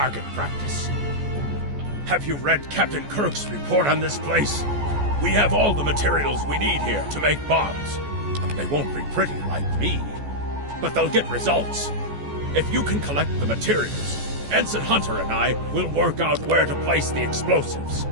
practice. Have you read Captain Kirk's report on this place? We have all the materials we need here to make bombs. They won't be pretty like me, but they'll get results. If you can collect the materials, Ensign Hunter and I will work out where to place the explosives.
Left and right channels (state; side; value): late; left; 14 ms